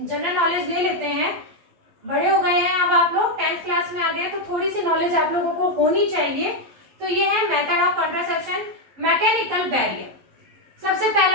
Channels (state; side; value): late; left; 11 ms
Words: नॉलेज ले लेते हैं। बड़े हो गए हैं अब आप लोग, 10th क्लास में आ गए, तो थोड़ी सी नॉलेज आप लोगों को होनी चाहिए। तो ये है method of contraception, mechanical barrier. सबसे